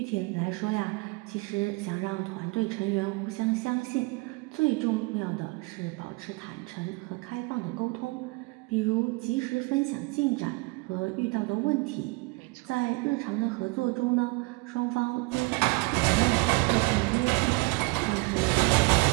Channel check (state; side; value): quieter; left; 27.2 dB